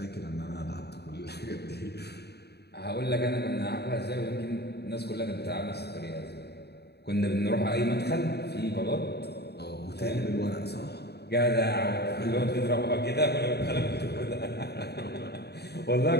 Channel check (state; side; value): late; right; 0.48 ms